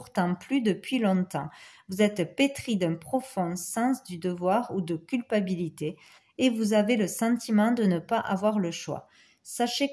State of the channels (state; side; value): identical; both; correlation 1.00